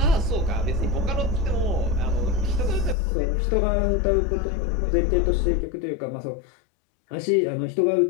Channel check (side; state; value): right; drops out; at 3.0 s